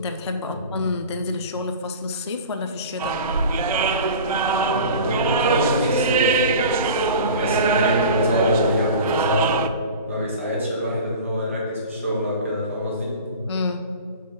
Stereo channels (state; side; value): inverted; both; correlation -0.37